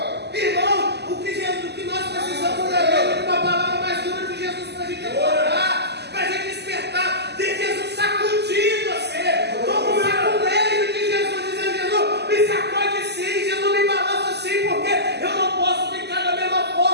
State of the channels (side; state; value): left; late; 0.49 ms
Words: Irmão, o que nós precisamos é uma palavra mais dura de Jesus para a gente acordar, para a gente despertar, de Jesus sacudir você, como um saculejo de Jesus, dizendo: Jesus, me sacode sim, Jesus me balança sim, porque eu não posso ficar da mesma